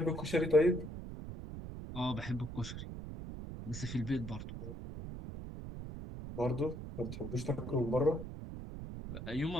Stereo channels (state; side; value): noise; right; rumble, 9 dB below the sound